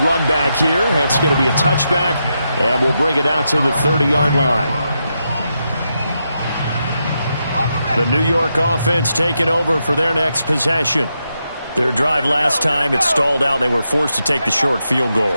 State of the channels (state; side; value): inverted; both; correlation -0.84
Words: run back here. That's going to be a touchback, and we'll bring it out to the 30-yard line. The New York offense taking over for their next possession. Their drive last time, it stalled out. They were forced to take the short field goal.